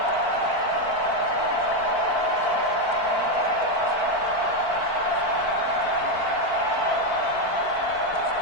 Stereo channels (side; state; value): right; late; 4.5 ms